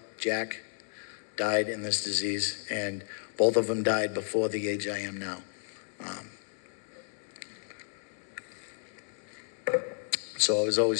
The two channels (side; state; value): right; silent; 56 dB below the other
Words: Jack, died in this disease, and both of them died before the age I am now. So I was